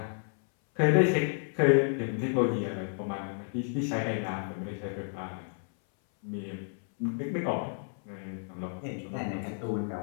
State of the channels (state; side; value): silent; right; 57 dB below the other